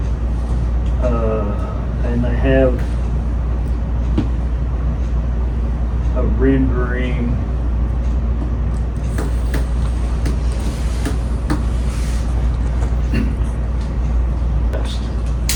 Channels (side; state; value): both; identical; correlation 1.00